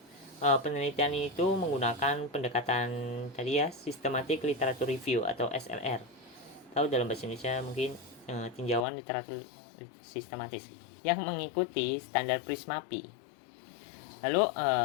penelitian itu menggunakan pendekatan tadi ya, systematic literature review atau SLR. Tahu dalam bahasa Indonesia mungkin tinjauan literatur sistematis yang mengikuti standar Prismapi. Lalu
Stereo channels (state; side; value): drops out; right; at 8.8 s